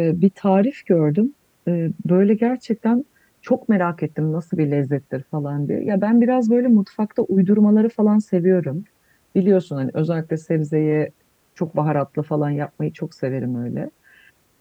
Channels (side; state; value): both; identical; correlation 1.00